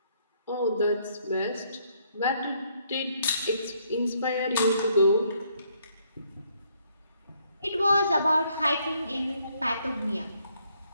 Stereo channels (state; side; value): inverted; both; correlation -0.69